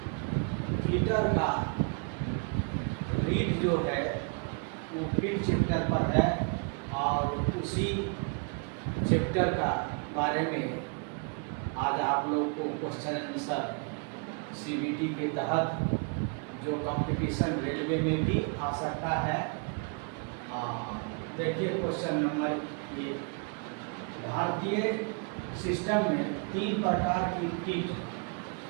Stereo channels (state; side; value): quieter; left; 35.9 dB